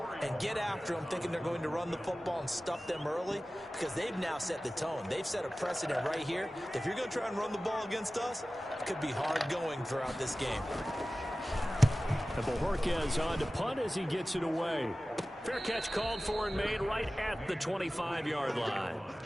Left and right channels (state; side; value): normal; both; correlation 0.96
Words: and get after them, thinking they're going to run the football and stuff them early, because they've now set the tone. They've set a precedent right here. If you're going to try and run the ball against us, it could be hard going throughout this game. And Bojorquez on to punt as he gets it away. Fair catch called for and made right at the 25-yard line.